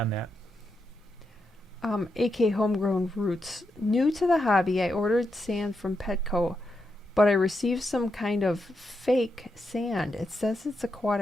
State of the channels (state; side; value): normal; both; correlation 0.84